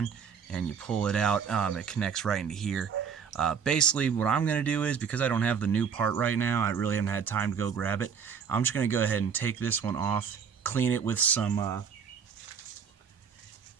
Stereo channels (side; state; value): left; quieter; 6.8 dB